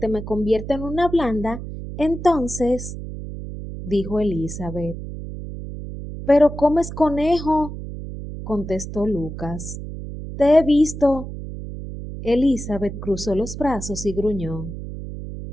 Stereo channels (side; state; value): right; noise; hum, 9 dB below the sound